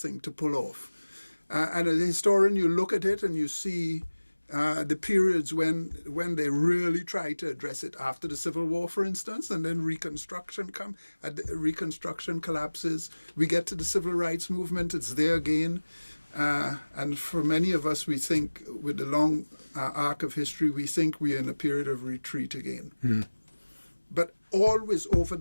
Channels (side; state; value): both; inverted; correlation -1.00